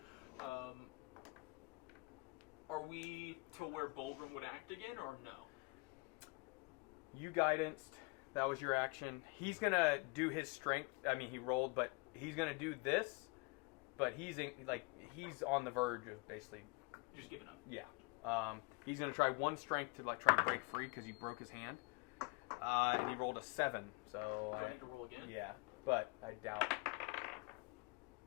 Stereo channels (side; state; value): right; quieter; 27.9 dB